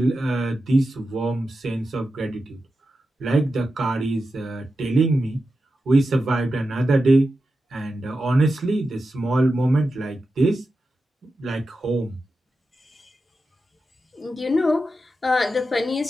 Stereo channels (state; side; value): normal; both; correlation 0.90